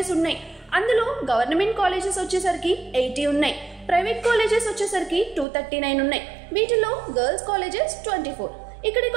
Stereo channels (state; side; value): drops out; left; at 5.5 s